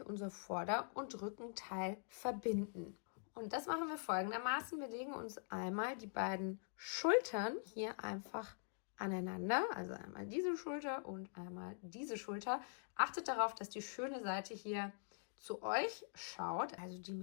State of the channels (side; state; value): right; silent; digital silence